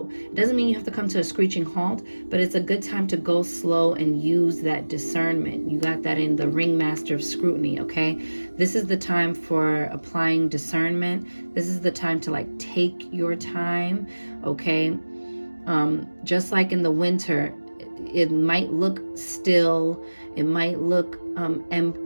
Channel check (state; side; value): inverted; both; correlation -1.00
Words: It doesn't mean you have to come to a screeching halt, but it's a good time to go slow and use that discernment. You got that in the Ringmaster of Scrutiny, okay? This is the time for applying discernment. This is the time to like take your time, okay? Just like in the winter, it might look still, it might look